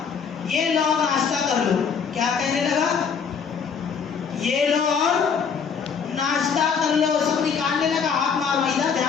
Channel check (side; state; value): right; quieter; 6.4 dB